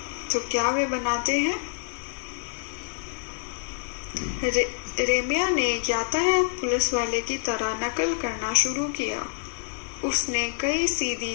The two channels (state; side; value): silent; right; digital silence